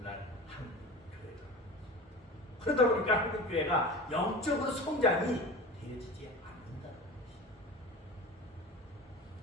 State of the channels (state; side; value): normal; both; correlation 0.33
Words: 한국 교회다. 그러다 보니까 한국 교회가 영적으로 성장이 되어지지 않는다는 것이.